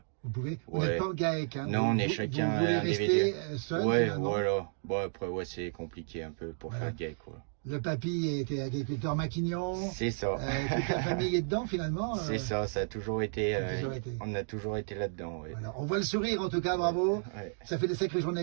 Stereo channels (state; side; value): silent; left; digital silence